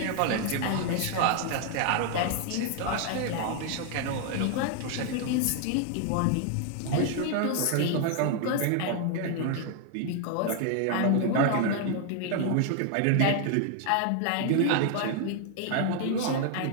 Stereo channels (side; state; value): both; different; correlation 0.00